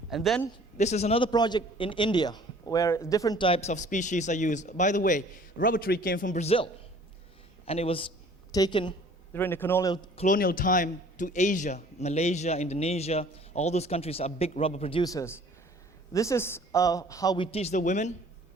And then this is another project in India where different types of species are used. By the way, rubber tree came from Brazil, and it was taken during the colonial time to Asia, Malaysia, Indonesia. All those countries are big rubber producers. This is how we teach the women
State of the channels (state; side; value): normal; both; correlation 0.52